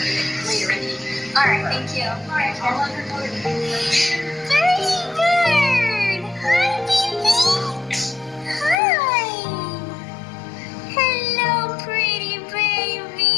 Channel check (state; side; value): drops out; right; at 8.8 s